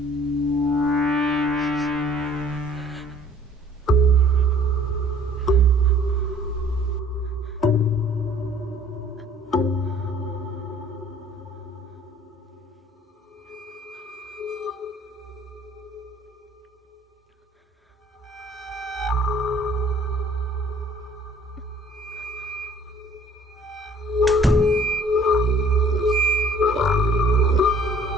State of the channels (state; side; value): normal; both; correlation 0.55